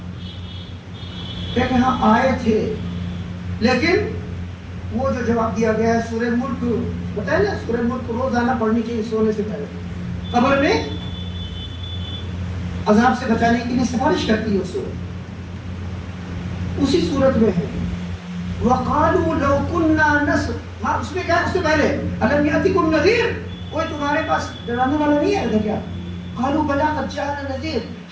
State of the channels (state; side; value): identical; both; correlation 1.00